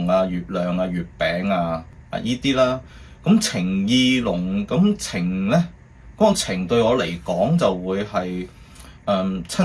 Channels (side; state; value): both; identical; correlation 1.00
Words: 啊、月亮啊、月餅啊依啲啦。咁情意濃，咁情咧嗰個情對我嚟講就會係